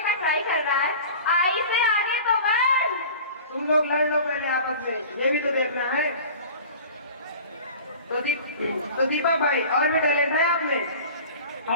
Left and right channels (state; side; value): inverted; both; correlation -0.40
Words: का ट्राई कर रहा है। आई से आगे तो बढ़। तुम लोग लड़ लो पहले आपस में, ये भी तो देखना है। तो दीपक भाई और भी टैलेंट है आप में?